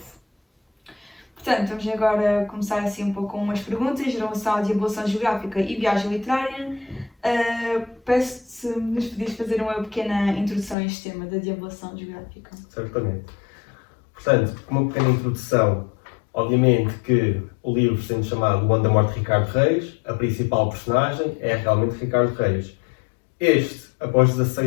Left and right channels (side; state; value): right; drops out; at 10.8 s